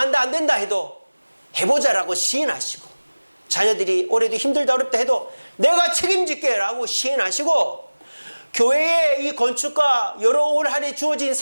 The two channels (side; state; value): both; inverted; correlation -1.00